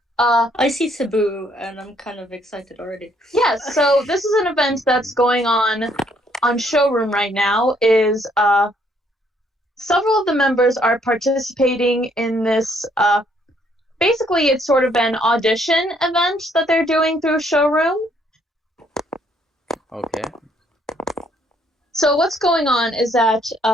I see Cebu and I'm kind of excited already. Yes, so this is an event that's going on Showroom right now. Is several of the members are participating in this. Basically, it's sort of an audition event that they're doing through Showroom. Okay. So what's going on is that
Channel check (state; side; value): normal; both; correlation 0.68